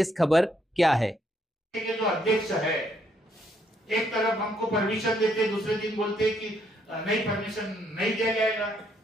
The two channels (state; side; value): normal; both; correlation 0.72